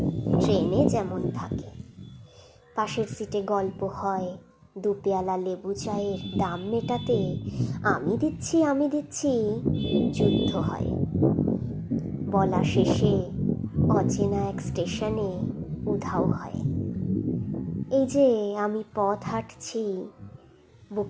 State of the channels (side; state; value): both; identical; correlation 1.00